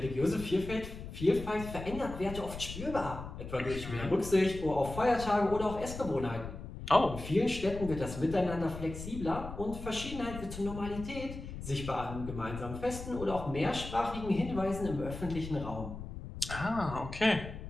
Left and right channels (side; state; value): left; noise; rumble, 10 dB below the sound